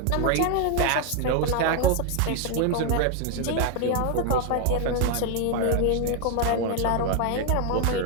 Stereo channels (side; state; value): both; different; correlation 0.00